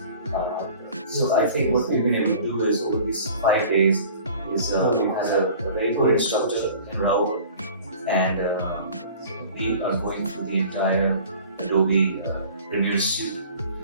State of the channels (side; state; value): both; inverted; correlation -0.46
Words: So I think what we've been able to do is over these 5 days is we had a very good instructor in Rahul, and we are going through the entire Adobe Premiere Suite,